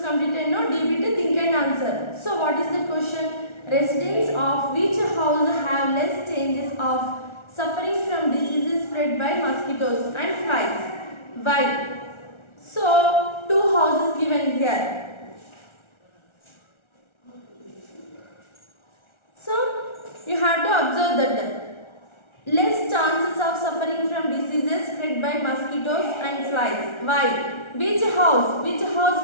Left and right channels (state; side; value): late; right; 1.4 ms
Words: completed. No, D bit think and answer. So what is the question? Residents of which house have less chances of suffering from diseases spread by mosquitoes and flies? Why? So two houses given here. So you have to observe that less chances of suffering from diseases spread by mosquitoes and flies. Why? Which house? Which